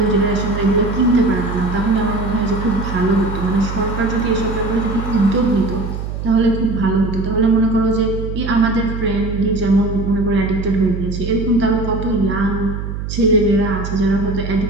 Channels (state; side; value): noise; right; hum, 6 dB below the sound